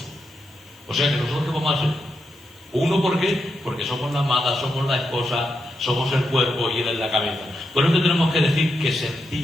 O sea que nosotros, ¿qué vamos a hacer? Uno, ¿por qué? Porque somos la amada, somos la esposa, somos el cuerpo y Él es la cabeza. Por eso tenemos que decir que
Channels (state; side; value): normal; both; correlation 0.84